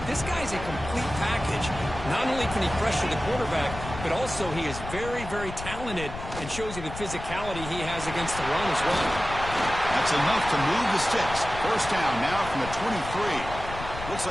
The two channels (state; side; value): noise; left; rumble, 10 dB below the sound